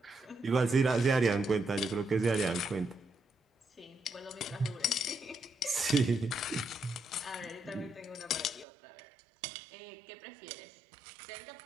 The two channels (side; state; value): left; drops out; at 8.7 s